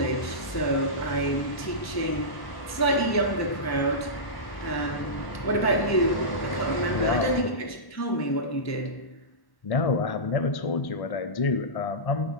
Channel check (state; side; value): late; right; 1.1 ms